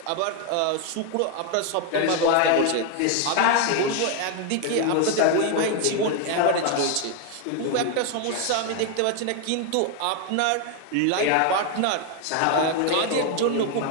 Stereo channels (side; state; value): both; different; correlation 0.01